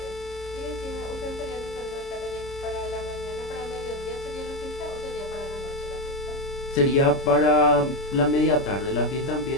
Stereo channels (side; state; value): right; late; 30 ms